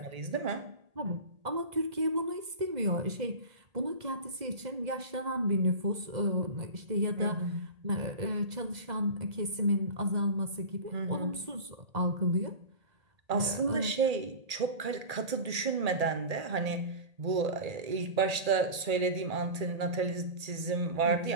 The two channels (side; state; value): left; late; 1.8 ms